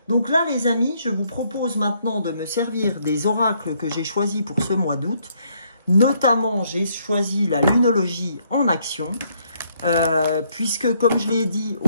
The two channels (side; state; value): both; inverted; correlation -0.70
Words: Donc là les amis, je vous propose maintenant de me servir des oracles que j'ai choisis pour ce mois d'août. Notamment, j'ai choisi la lunologie en action. Puisque comme je l'ai dit